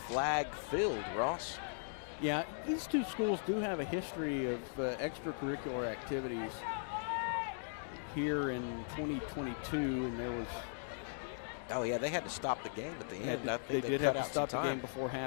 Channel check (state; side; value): silent; right; digital silence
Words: Ross. Yeah, these two schools do have a history of extracurricular activities here in 2022, and there was... Oh, yeah, they had to stop the game at the end. I think they did have to stop the game before